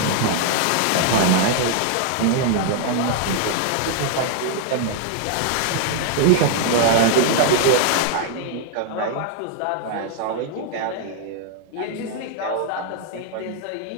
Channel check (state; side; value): different; both; correlation 0.00